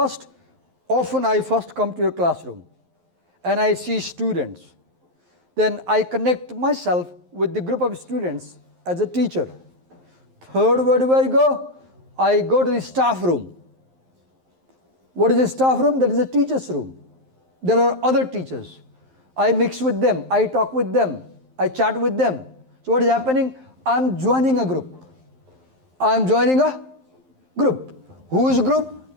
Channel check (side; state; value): left; late; 11 ms